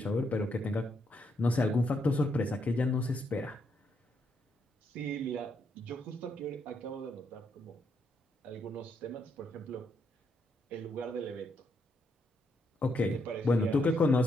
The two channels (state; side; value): normal; both; correlation 0.77